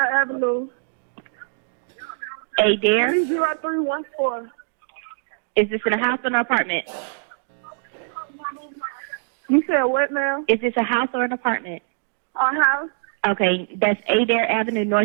Avenue. Adair. 30314. Is this in a house or an apartment? You said what now? Is this a house or an apartment? Our house? Okay, that's Adair Avenue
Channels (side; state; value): left; silent; digital silence